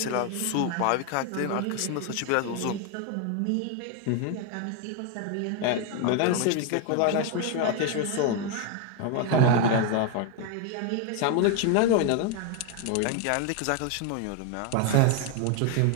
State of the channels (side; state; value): both; different; correlation 0.01